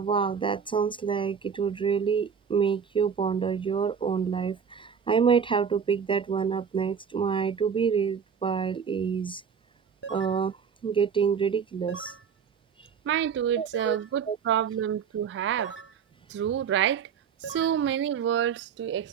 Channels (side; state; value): left; quieter; 6.9 dB